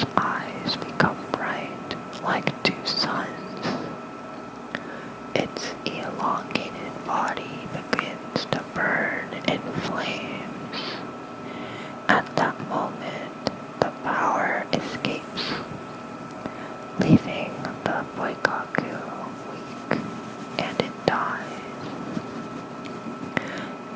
eyes become bright like two suns. Its elongated body begins to burn in flames. At that moment, the power escapes, leaving the Boikaku weak, and it dies.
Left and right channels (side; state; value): both; identical; correlation 1.00